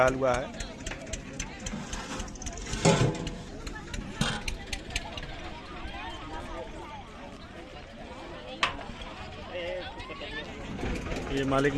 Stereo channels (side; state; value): both; identical; correlation 1.00